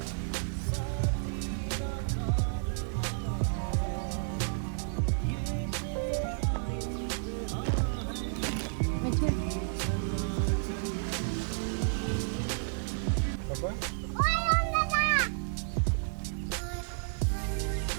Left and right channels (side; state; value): left; silent; digital silence